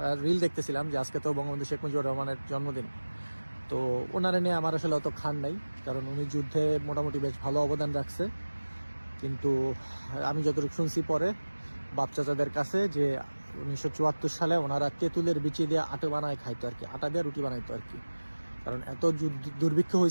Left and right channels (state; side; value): inverted; both; correlation -1.00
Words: রিল দেখতেছিলাম যে আজকে তো বঙ্গবন্ধু শেখ মুজিবুর রহমানের জন্মদিন। তো ওনারা নিয়ে আমার আসলে অত খান নাই, কারণ উনি যুদ্ধে মোটামুটি বেশ ভালো অবদান রাখছে। কিন্তু আমি যতটুকু শুনছি পরে বাপ চাচাদের কাছে যে 1974 সালে ওনারা তেঁতুলের বিচি দিয়ে আটা বানায় খাইতো আর কি, আটা দিয়ে রুটি বানাইতো আর কি। কারণ এত দুর্ভিক্ষ